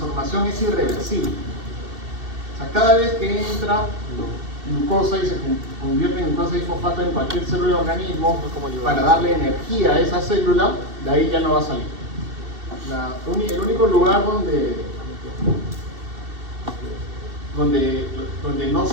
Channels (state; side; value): late; left; 2.7 ms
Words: es irreversible. O sea, cada vez que entra glucosa y se convierte en glucosa 6-fosfato en cualquier célula del organismo para darle energía a esa célula, de ahí ya no va a salir. El único lugar donde